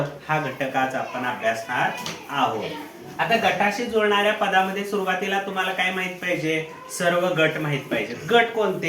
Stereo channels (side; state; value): both; identical; correlation 1.00